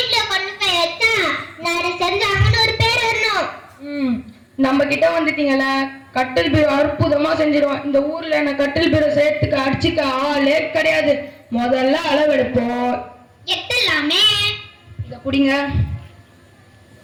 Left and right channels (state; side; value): identical; both; correlation 1.00